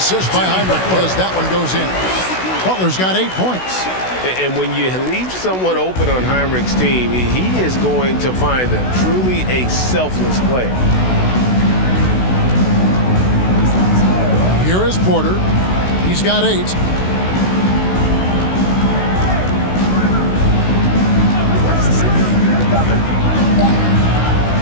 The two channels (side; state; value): right; late; 16 ms